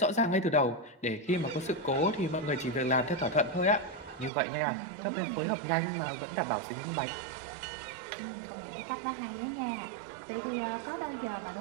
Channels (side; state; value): left; drops out; at 4.3 s